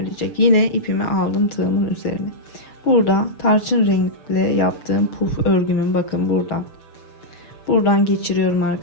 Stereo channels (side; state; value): right; late; 6.9 ms